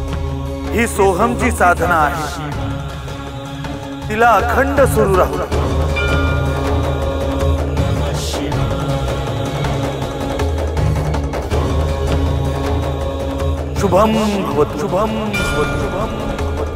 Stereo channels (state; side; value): identical; both; correlation 1.00